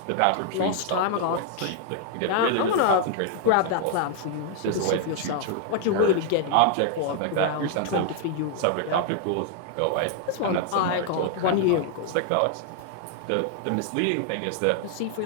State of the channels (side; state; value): both; different; correlation 0.00